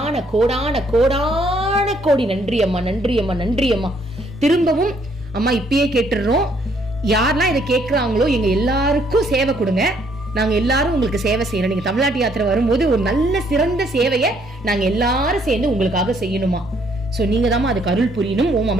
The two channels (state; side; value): normal; both; correlation 0.67